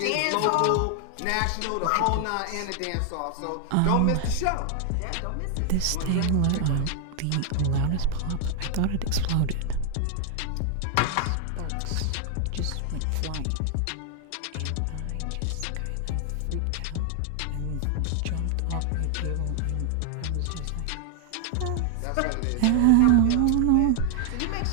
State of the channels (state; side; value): different; both; correlation 0.00